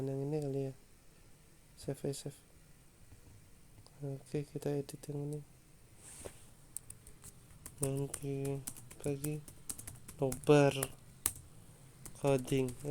ini kali ya, save. Oke, kita edit yang ini, nanti lagi nobar coding,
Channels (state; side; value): identical; both; correlation 1.00